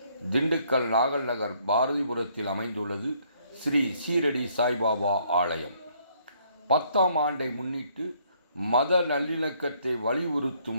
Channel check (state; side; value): inverted; both; correlation -0.67